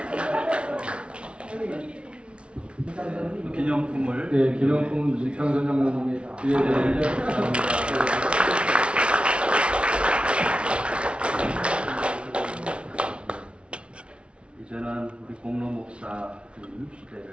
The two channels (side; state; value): left; late; 0.059 ms